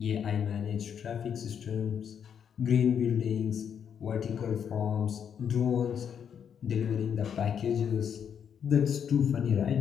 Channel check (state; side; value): quieter; right; 7.9 dB